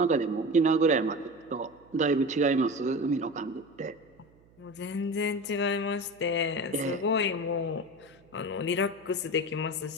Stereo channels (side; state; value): right; noise; hum, 29 dB below the sound